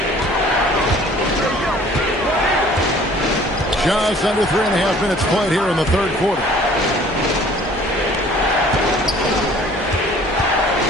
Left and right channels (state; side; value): normal; both; correlation 0.52